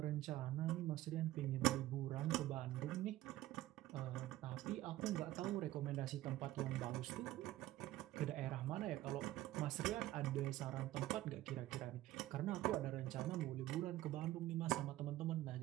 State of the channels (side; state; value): left; quieter; 15.5 dB